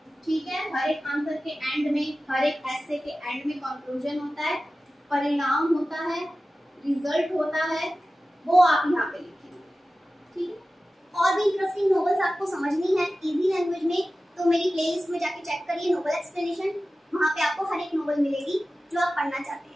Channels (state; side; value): normal; both; correlation 0.95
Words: ठीक है। हर एक आंसर के एंड में, हर एक एसे के एंड में कंक्लूजन होता है, परिणाम होता है, रिजल्ट होता है, वो आप यहाँ पे लिखेंगे, ठीक है। और भी इंटरेस्टिंग नॉवेल्स आपको समझनी है इजी लैंग्वेज में, तो मेरी प्लेलिस्ट में जाके चेक करिए नोवेल एक्सप्लेनेशन। वहाँ पे आपको हर एक नोवेल मिलेगी जो आप पढ़ना चाहते